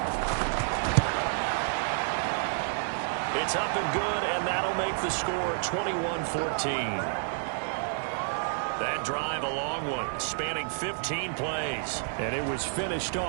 It's up and good, and that'll make the score 21-14. That drive a long one, spanning 15 plays. And it was finished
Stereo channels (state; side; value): silent; left; digital silence